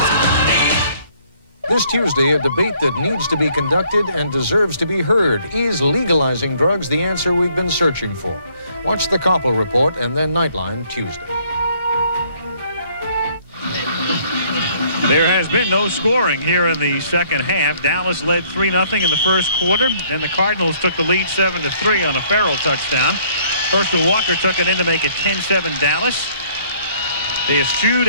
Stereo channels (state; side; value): inverted; both; correlation -0.63